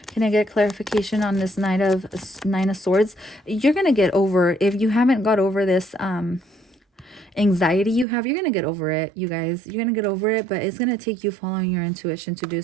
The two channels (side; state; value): left; drops out; at 8.1 s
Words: Can I get clarification on this Nine of Swords? You're going to get over, if you haven't got over this anxiety you have, you're going to get over it, you guys. You're going to get over it, but it's going to take you following your intuition to do